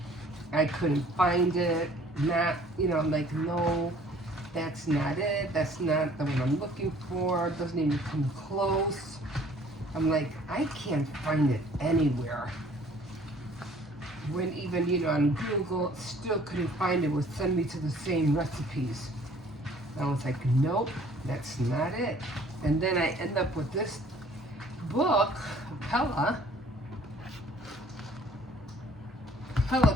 I couldn't find it. Not, you know, like, no, that's not it. That's not the one I'm looking for. It doesn't even come close. I'm like, I can't find it anywhere. When even, you know, on Google, still couldn't find it. Would send me to the same recipes. I was like, nope, that's not it. And then I end up with this book, Pella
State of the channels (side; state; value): both; normal; correlation 0.55